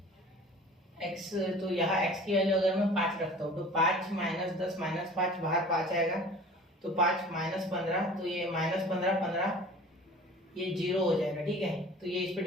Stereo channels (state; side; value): normal; both; correlation 0.44